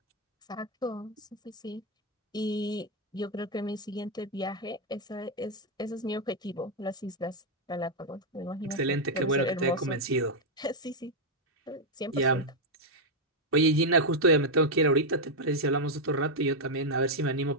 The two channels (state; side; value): normal; both; correlation 0.00